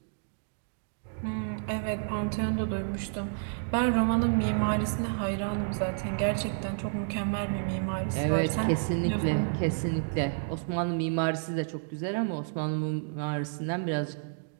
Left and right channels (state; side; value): silent; left; digital silence